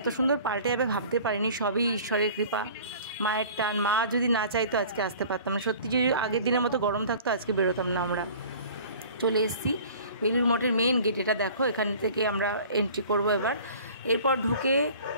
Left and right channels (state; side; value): inverted; both; correlation -0.46